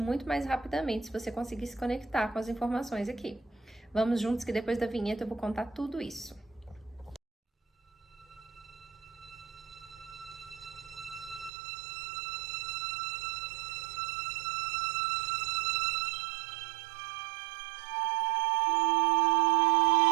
mais rapidamente se você conseguir se conectar com as informações aqui. Vamos juntos que depois da vinheta eu vou contar tudo isso.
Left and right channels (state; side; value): drops out; left; at 11.5 s